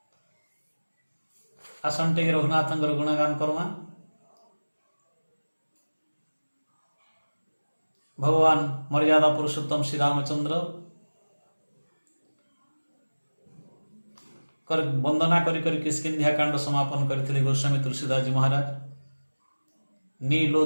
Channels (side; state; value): both; inverted; correlation -1.00